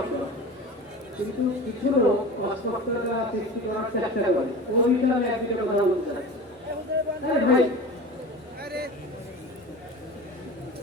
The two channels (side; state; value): both; normal; correlation 0.34